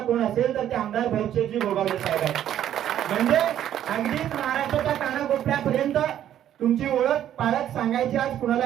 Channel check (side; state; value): left; quieter; 11.0 dB